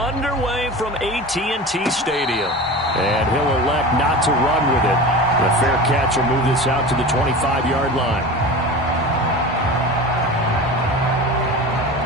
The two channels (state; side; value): normal; both; correlation 0.32